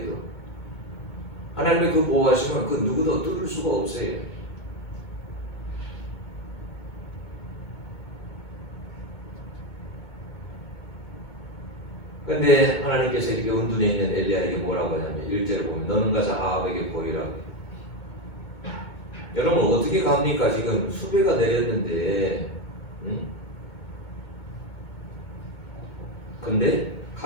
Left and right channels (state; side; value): late; right; 2.2 ms